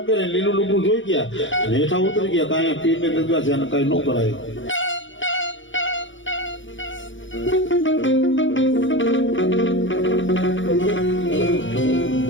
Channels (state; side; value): late; right; 0.56 ms